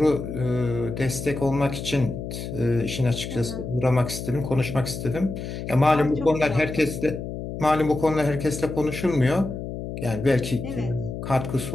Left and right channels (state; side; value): noise; left; hum, 7 dB below the sound